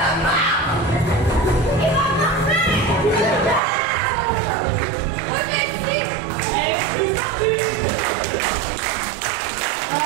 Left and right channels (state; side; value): drops out; left; at 3.6 s